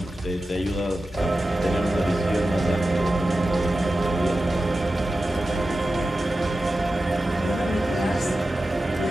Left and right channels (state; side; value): normal; both; correlation 0.93